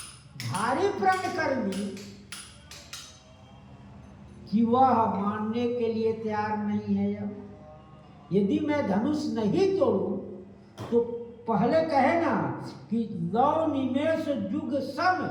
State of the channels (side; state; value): both; identical; correlation 1.00